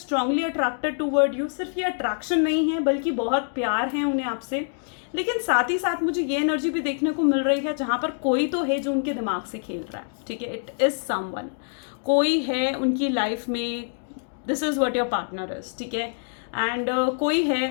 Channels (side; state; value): right; silent; digital silence